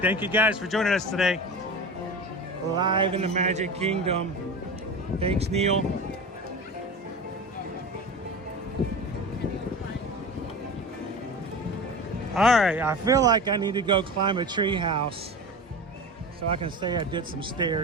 Thank you guys for joining us today. Live in the Magic Kingdom. Thanks, Neil. All right, I feel like I need to go climb a tree house so I can say I did some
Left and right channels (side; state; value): both; normal; correlation 0.30